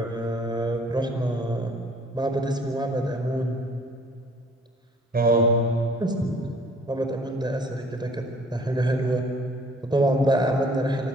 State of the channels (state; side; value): normal; both; correlation 0.56